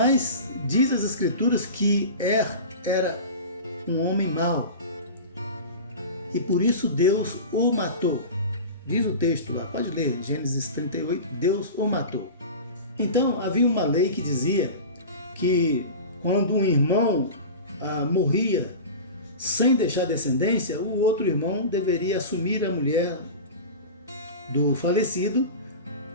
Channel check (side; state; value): both; inverted; correlation -0.31